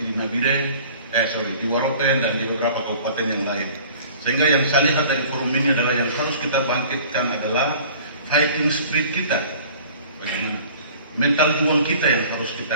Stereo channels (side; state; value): both; inverted; correlation -0.47